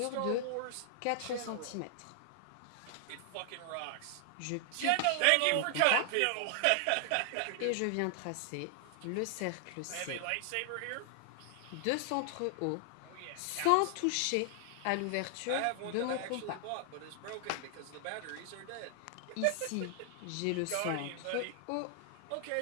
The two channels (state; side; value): different; both; correlation 0.00